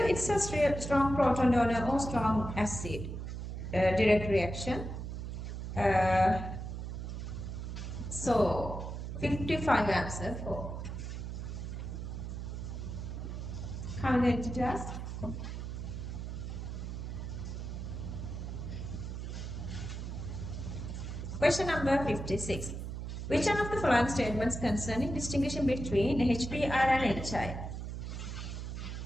a strong proton donor or strong acid. Direct reaction. So, 55 answer 4. How many did you ask? Question number 56. Which one of the following statements concerning distinguishing between HBr and HI?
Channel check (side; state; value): right; noise; hum, 6 dB below the sound